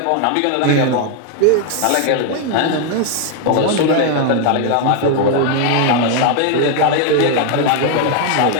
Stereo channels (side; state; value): both; different; correlation 0.00